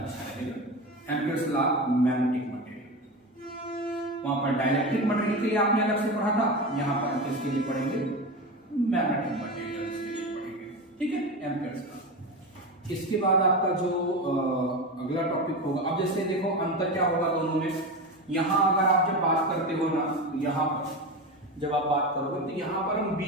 रहेगा। एम्पियर्स लॉ मैग्नेटिक मटेरियल, वहां पर डाइलेक्ट्रिक मटेरियल के लिए आपने अलग से पढ़ा था, यहां पर हम किसके लिए पढ़ेंगे, मैग्नेटिक मटेरियल के लिए पढ़ेंगे, ठीक है, एम्पियर्स लॉ। इसके बाद आपका जो अगला टॉपिक होगा, अब जैसे देखो अंतर क्या होगा दोनों में, यहां अगर आप जब बात करते हो ना, यहां पर जब आप बात करोगे तो यहां पर हम बी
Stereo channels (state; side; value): normal; both; correlation 0.23